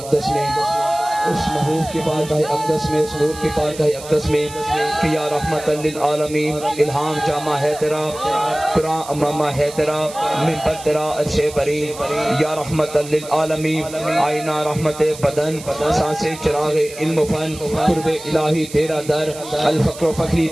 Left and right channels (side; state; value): right; noise; hiss, 15 dB below the sound